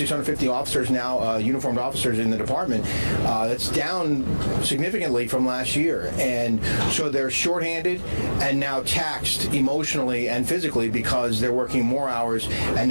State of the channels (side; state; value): both; inverted; correlation -1.00